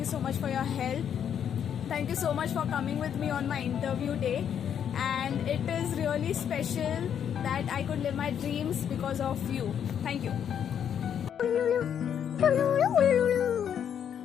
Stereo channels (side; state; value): right; quieter; 8.7 dB